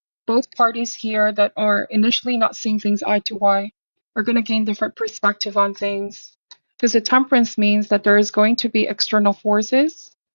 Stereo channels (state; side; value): inverted; both; correlation -1.00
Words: Both parties here that are initially not seeing things eye to eye are going to gain different perspective on things. Because the temperance means that there is going to be external forces